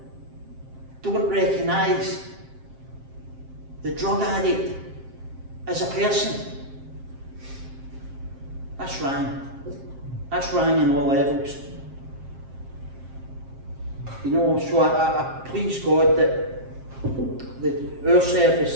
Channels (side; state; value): left; late; 7.5 ms